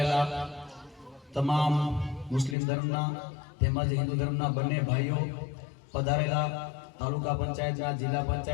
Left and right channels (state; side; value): drops out; right; at 2.6 s